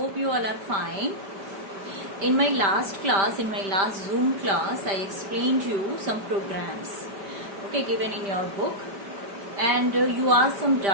you all are fine. In my last class, in my last Zoom class, I explained you some programs, okay, given in your book. And you asked some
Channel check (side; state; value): left; late; 5.1 ms